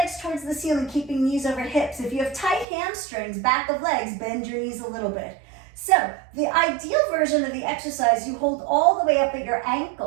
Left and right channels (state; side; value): drops out; left; at 2.7 s